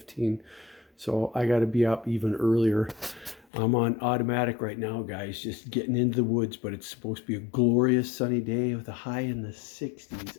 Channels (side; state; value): right; drops out; at 3.5 s